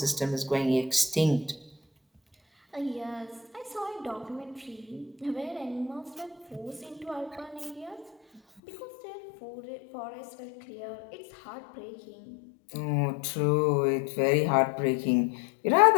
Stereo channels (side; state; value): right; drops out; at 8.6 s